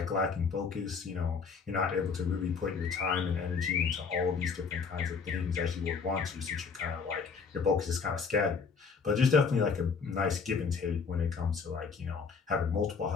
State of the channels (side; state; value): right; quieter; 5.4 dB